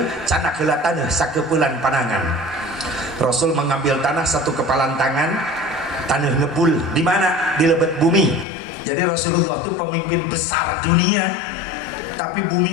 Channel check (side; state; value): right; drops out; at 8.5 s